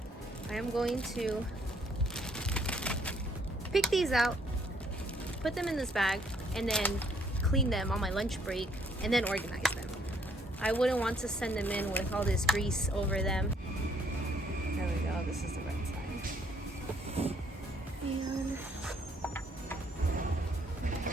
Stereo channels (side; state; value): both; normal; correlation 0.67